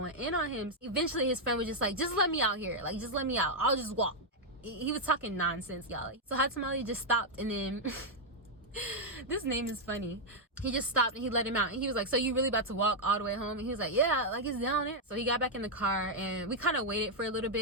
in on him. Eventually, his friend was just like, just let me out here. Like, just let me out. I'll just walk. He was talking nonsense, y'all. So Hot Tamale just stopped, and then this name is funny. He just stopped and he let him out. And he was like, so you really about to walk all the way home? And he was like, yeah, like it's down there. So he got back in the car, and we kind of waited for a little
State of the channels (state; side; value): normal; both; correlation -0.02